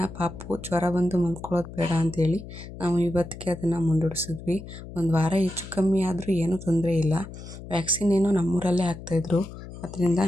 ಪಾಪು ಜ್ವರ ಬಂದು ಮಲ್ಕೊಳ್ಳೋದು ಬೇಡ ಅಂಥೇಳಿ ನಾವು ಇವತ್ತಿಗೆ ಅದನ್ನು ಮುಂದೂಡಿಸಿದ್ವಿ. ಒಂದು ವಾರ ಹೆಚ್ಚು ಕಮ್ಮಿ ಆದರೂ ಏನೂ ತೊಂದರೆ ಇಲ್ಲ. ವ್ಯಾಕ್ಸಿನ್ ಏನೋ ನಮ್ಮೂರಲ್ಲೇ ಹಾಕ್ತಾಯಿದ್ರು, ಅದರಿಂದ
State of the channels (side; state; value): left; noise; hum, 13 dB below the sound